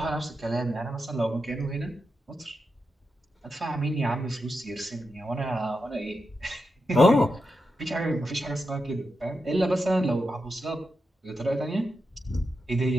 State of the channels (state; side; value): normal; both; correlation 0.88